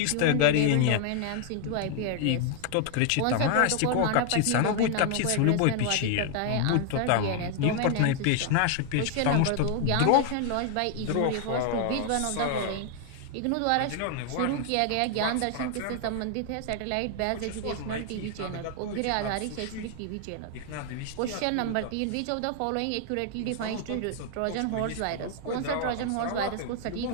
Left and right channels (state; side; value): different; both; correlation 0.00